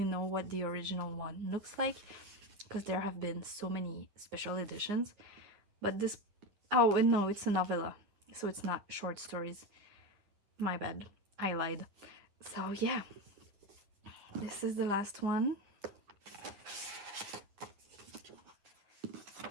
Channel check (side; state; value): left; late; 9.6 ms